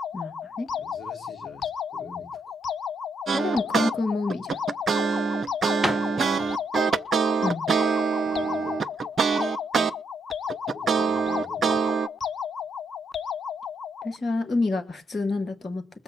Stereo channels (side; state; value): both; normal; correlation 0.78